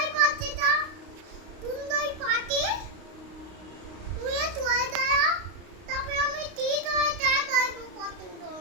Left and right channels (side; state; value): left; late; 32 ms